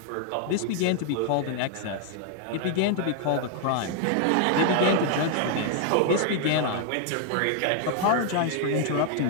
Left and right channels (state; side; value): different; both; correlation 0.00